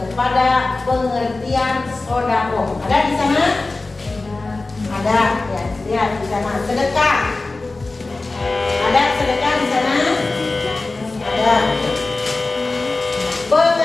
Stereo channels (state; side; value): quieter; right; 3.3 dB